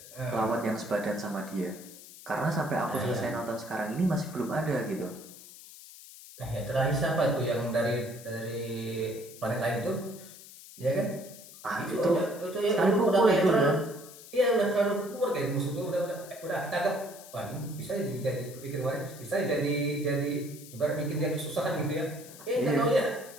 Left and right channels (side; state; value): left; noise; hiss, 17 dB below the sound